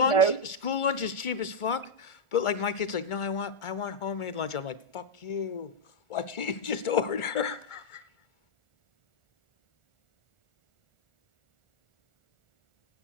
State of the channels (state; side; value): late; right; 1.4 ms